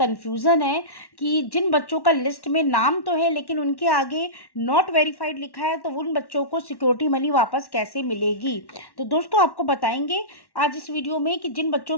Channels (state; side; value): late; right; 1.1 ms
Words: है कि जिन बच्चों का लिस्ट में नाम तो है लेकिन उनके आगे नॉट वेरीफाइड लिखा है, तो उन बच्चों को सिक्योरिटी मनी वापस कैसे मिलेगी। तो दोस्तों, आपको बताएंगे आज इस वीडियो में कि जिन बच्चों